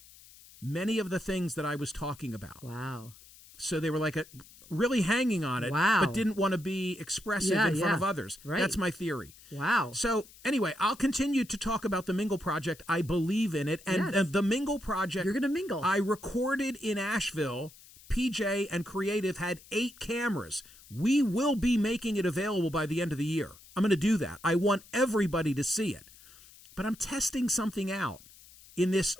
many of the things that I was talking about. Wow. So they were like really hanging on it, wow. but didn't want to be expressive in front of others. Right. That's my theory. Wow. So anyway, I'll continue to talk about the Mingle Project. I believe in it. And the Mingle Project. You're going to mingle. I recorded in Asheville. PJ and Creative had 8 cameras. We will be making it available by the end of the year. I'm going to do that. I want everybody to see it. But I'm testing something out in this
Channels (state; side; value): noise; left; hiss, 22 dB below the sound